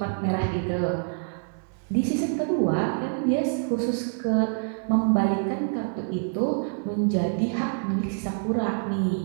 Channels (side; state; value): left; silent; 61 dB below the other